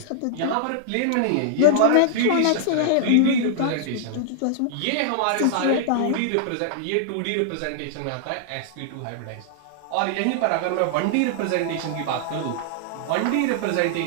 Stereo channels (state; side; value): different; both; correlation -0.01